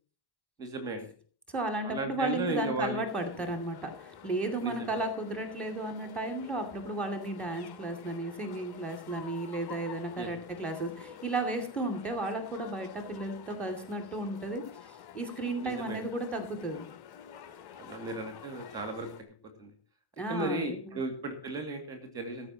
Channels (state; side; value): late; right; 1.1 ms